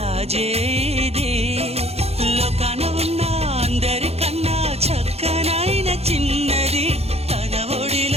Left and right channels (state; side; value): late; left; 0.30 ms